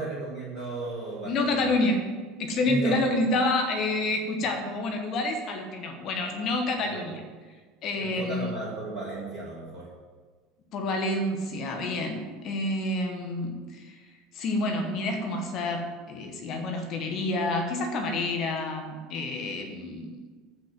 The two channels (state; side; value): normal; both; correlation 0.40